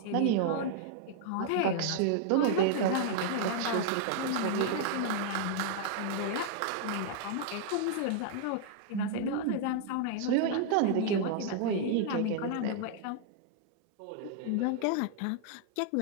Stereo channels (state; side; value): different; both; correlation -0.01